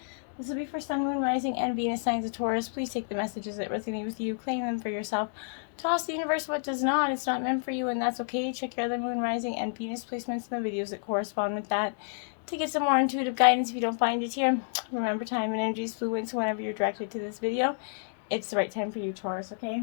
This will be for Sun, Moon, Rising, and Venus signs of Taurus. Please take the messages that resonate with you, claim them for yourself. Toss the universe what does not. It's not meant for you, and that's okay. Check your other Moon, Rising, and Venus placements in the videos that correspond with that to get some more intuitive guidance if you don't find it here. Remember, time and energy is fluid, so whenever you're directed to this video, it's the right time for you, Taurus, okay?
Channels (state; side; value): silent; right; digital silence